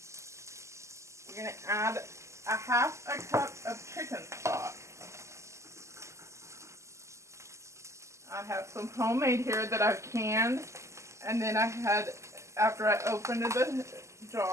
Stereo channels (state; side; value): late; left; 0.14 ms